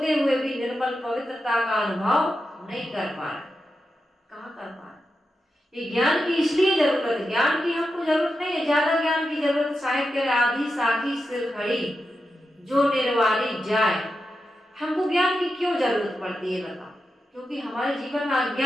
हुए भी निर्मल पवित्रता का अनुभव नहीं कर पा रहे। कहाँ कर पा रहे? ये ज्ञान की इसलिए जरूरत है। ज्ञान की हमको जरूरत नहीं है, ज्यादा ज्ञान की जरूरत। साहिब कह रहे आधी साखी सिर खड़ी जो निर्वाणी जाए। हमको ज्ञान की क्यों जरूरत पड़ती है बताओ? क्योंकि हमारे जीवन में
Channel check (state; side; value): normal; both; correlation 0.89